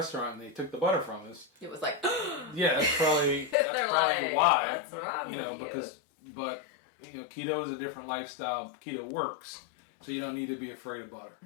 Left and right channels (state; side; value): drops out; right; at 3.6 s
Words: and they took the butter from us. It was like, Yeah, that's probably like, why. "What's wrong with you?" Because keto is a different lifestyle. Keto works, so you don't need to be afraid of butter.